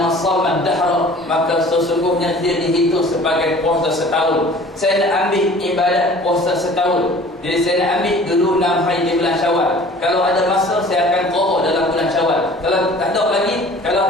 shama dahra, maka sesungguhnya dia dihitung sebagai puasa setahun. Saya nak ambil ibadat puasa setahun, jadi saya nak ambil dulu 6 hari di bulan Syawal. Kalau ada masa saya akan qadha dalam bulan Syawal. Kalau tak ada lagi, kalau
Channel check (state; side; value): normal; both; correlation 0.47